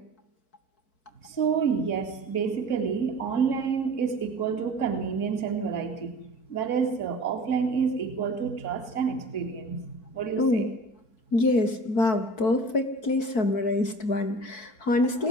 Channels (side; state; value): right; late; 4.6 ms